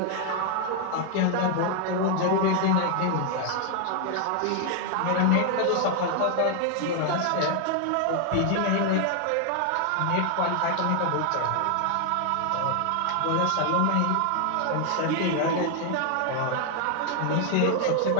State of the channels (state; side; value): different; both; correlation 0.00